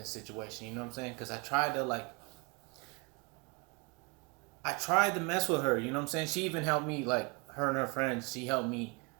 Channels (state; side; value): quieter; left; 29.6 dB